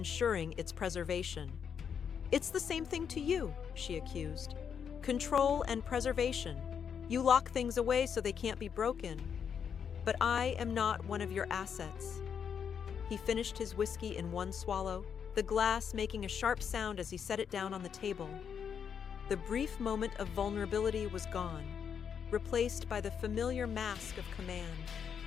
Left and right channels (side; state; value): right; quieter; 7.4 dB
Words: its preservation." "It's the same thing to you," she accused. "Control and preservation. You lock things away so they can't be broken. But I am not one of your assets." He finished his whiskey in one swallow, the glass making a sharp sound as he set it down on the table. The brief moment of vulnerability was gone, replaced by the familiar mask of command.